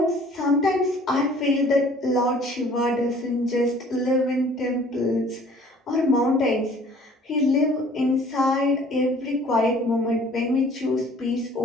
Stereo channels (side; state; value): both; normal; correlation 0.53